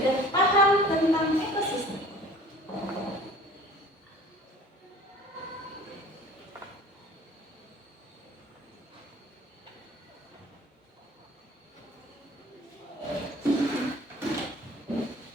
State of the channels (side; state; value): both; normal; correlation 0.47